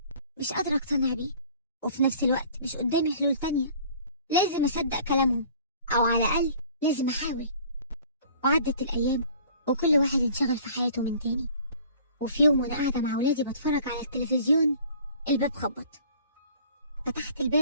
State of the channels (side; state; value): both; inverted; correlation -0.50